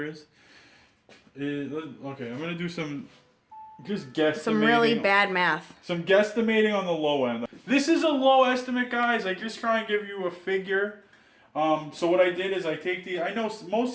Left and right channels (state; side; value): identical; both; correlation 1.00